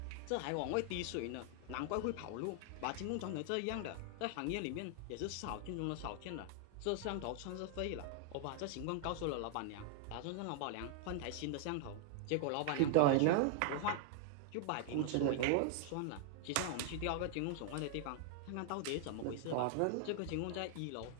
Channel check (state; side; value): different; both; correlation 0.00